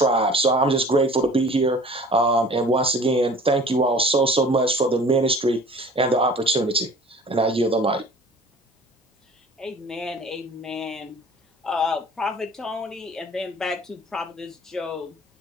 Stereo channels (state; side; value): normal; both; correlation 0.46